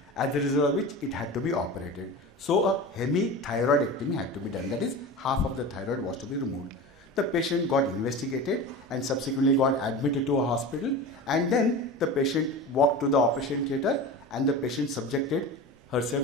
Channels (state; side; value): normal; both; correlation 0.31